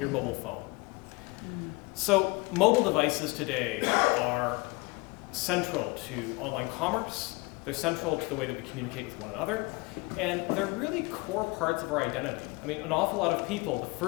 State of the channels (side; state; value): right; quieter; 25.8 dB